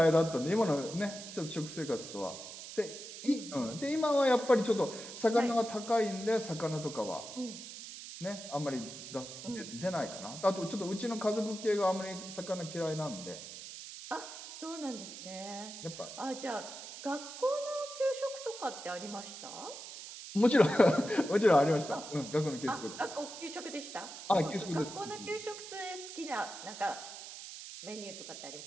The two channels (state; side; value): noise; right; hiss, 11 dB below the sound